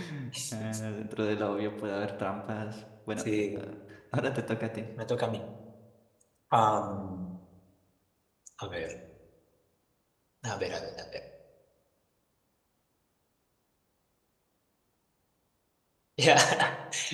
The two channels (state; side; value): identical; both; correlation 1.00